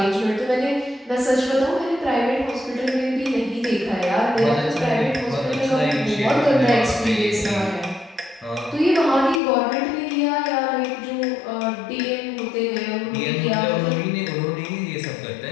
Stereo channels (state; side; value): drops out; right; at 9.4 s